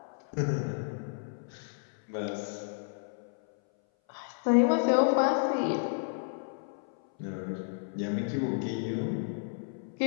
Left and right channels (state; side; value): silent; right; 57 dB below the other